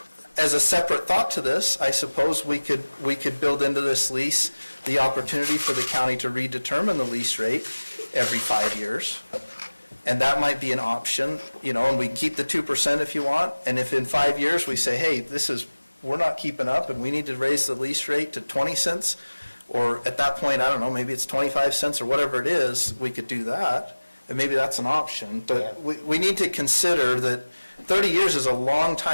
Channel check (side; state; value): both; inverted; correlation -1.00